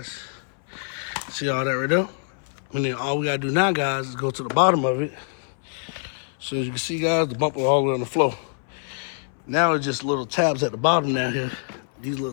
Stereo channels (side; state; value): right; silent; 62 dB below the other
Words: See all that right there? And then all we gotta do now, guys, is go to the bottom of it. So as you can see, guys, the bumper all the way on the floor. Now it's just little tabs at the bottom down here. These little